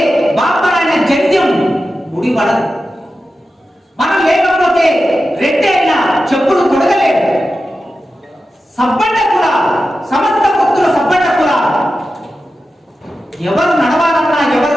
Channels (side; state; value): both; normal; correlation 0.92